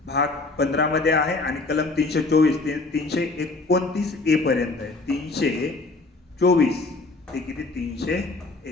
भाग 15 मध्ये आहे आणि कलम 324 ते 329 ए पर्यंत आहे. 324 ते किती,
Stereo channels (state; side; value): quieter; right; 3.4 dB